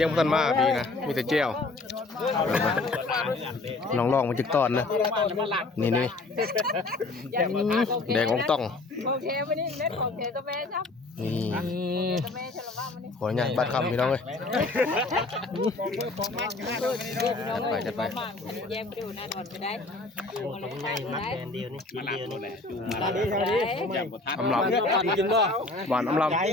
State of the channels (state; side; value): quieter; right; 3.3 dB